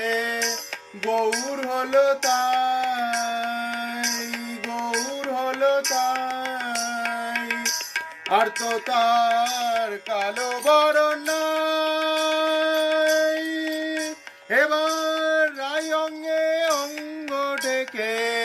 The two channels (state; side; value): identical; both; correlation 1.00